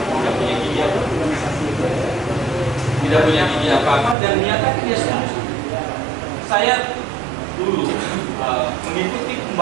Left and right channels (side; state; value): left; drops out; at 4.2 s